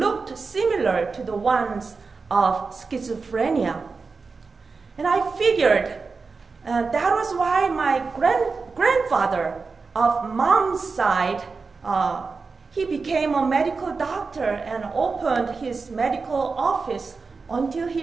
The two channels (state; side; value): quieter; left; 4.4 dB